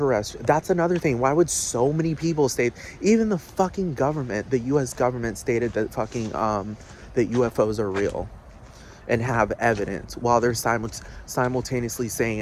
That's another thing. Why would so many people state, even the fucking government, the US government stated that fucking, that UFOs are real and have evidence, while they're simultaneously saying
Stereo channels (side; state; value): both; identical; correlation 1.00